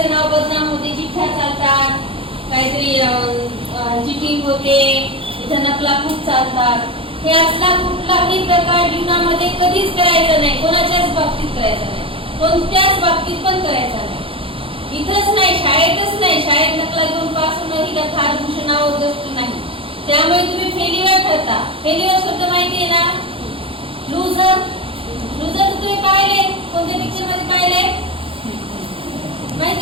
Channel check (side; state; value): left; late; 0.26 ms